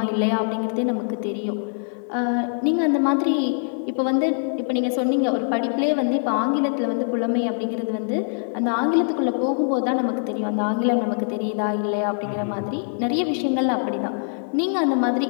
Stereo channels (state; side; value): silent; right; 63 dB below the other